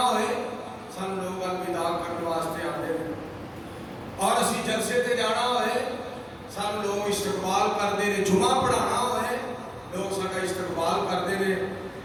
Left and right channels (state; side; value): identical; both; correlation 1.00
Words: ہوئے سانو لوگ الوداع کرن واسطے آتے ہیں اور اسی جلسے تے جانا ہوئے سانو لوگ استقبال کرتے ہیں جمعہ پڑھانا ہوئے لوگ ساڈا استقبال کرتے ہیں